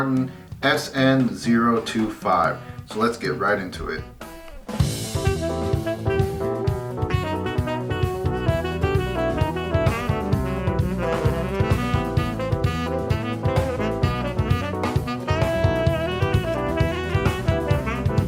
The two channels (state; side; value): identical; both; correlation 1.00